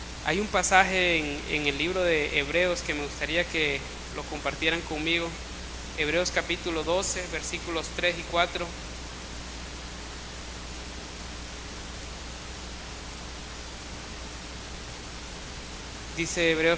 Hay un pasaje en el libro de Hebreos que me gustaría que lo compartieran conmigo. Hebreos capítulo 12, versículos 3 y 4. Dice Hebreos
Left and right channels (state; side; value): identical; both; correlation 1.00